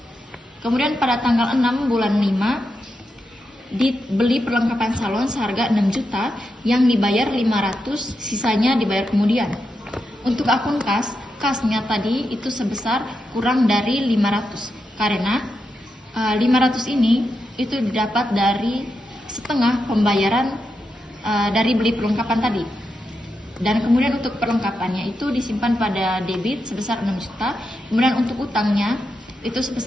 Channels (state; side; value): normal; both; correlation 0.86